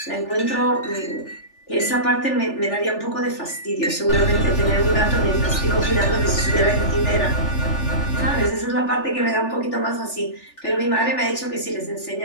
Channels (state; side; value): late; right; 3.4 ms